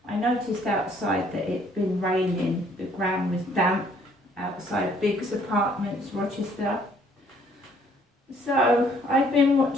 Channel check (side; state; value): both; normal; correlation 0.62